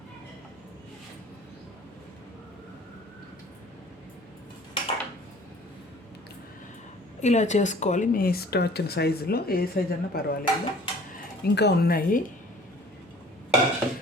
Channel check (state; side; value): normal; both; correlation 0.50